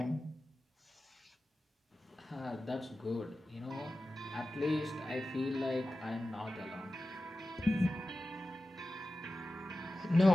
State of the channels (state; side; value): normal; both; correlation 0.94